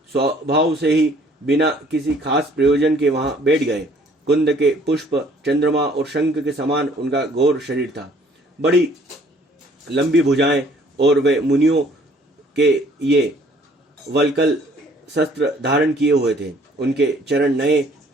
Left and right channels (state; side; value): normal; both; correlation 0.58